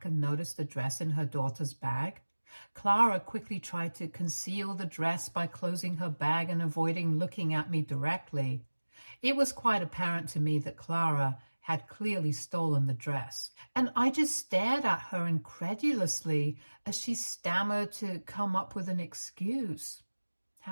and noticed the dress in her daughter's bag. Clara quickly tried to conceal the dress by closing her bag and avoiding looking at me directly. It was quite apparent to me that Clara had clearly stolen the dress, and I just stared at her incredulously as she stammered to come up with an excuse.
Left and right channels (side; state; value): both; inverted; correlation -1.00